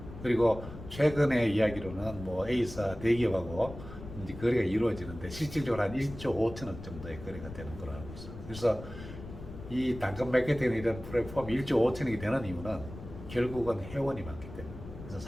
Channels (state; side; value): noise; left; rumble, 13 dB below the sound